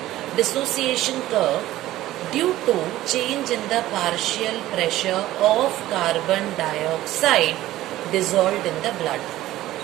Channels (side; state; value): left; quieter; 15.2 dB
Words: dissociation curve due to change in the partial pressure of carbon dioxide dissolved in the blood.